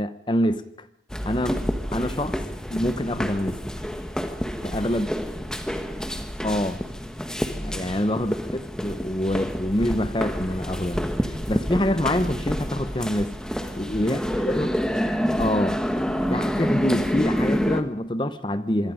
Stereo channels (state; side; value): normal; both; correlation 0.84